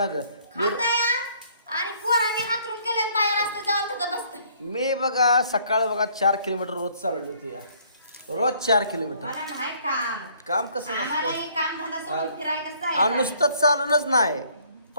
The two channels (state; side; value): inverted; both; correlation -0.62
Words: ग. मी बघा सकाळ बघा 4 किलोमीटर रोज चालवली होती या. रोज 4 किलोमीटर काम कसं नुसतंच चालूनच नाही.